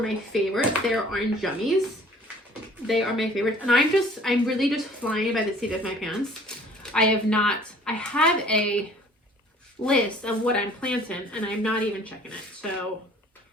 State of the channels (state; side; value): normal; both; correlation 0.52